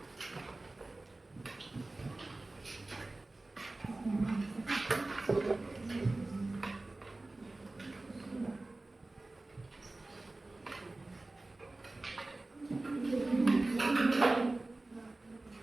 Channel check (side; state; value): left; quieter; 3.0 dB